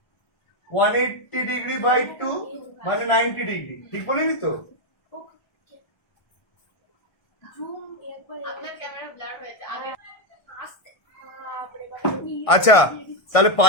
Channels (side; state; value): right; late; 1.6 ms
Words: 180 ডিগ্রি বাই 2 মানে 90 ডিগ্রি, ঠিক বলিনি তো? আচ্ছা, তাহলে